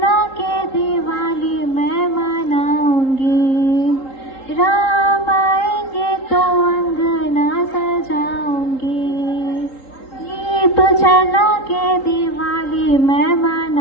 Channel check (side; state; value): right; late; 3.8 ms